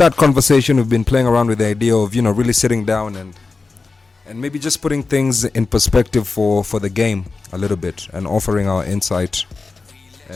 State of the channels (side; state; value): right; quieter; 4.0 dB